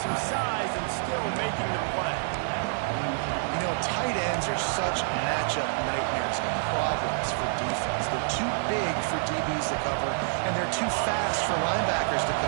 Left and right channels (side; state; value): left; silent; digital silence